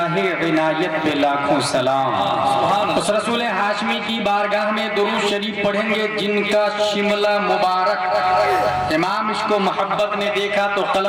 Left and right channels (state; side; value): identical; both; correlation 1.00